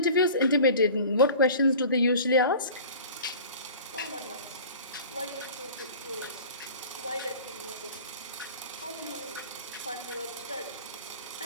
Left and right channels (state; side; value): inverted; both; correlation -0.41